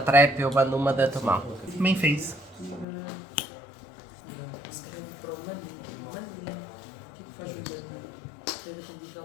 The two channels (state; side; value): drops out; right; at 2.9 s